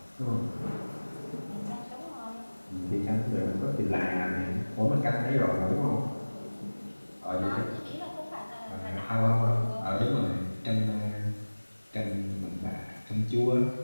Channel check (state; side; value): inverted; both; correlation -1.00